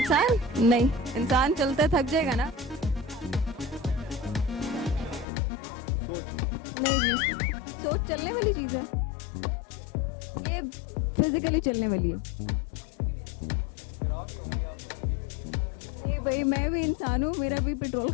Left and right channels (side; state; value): right; drops out; at 5.2 s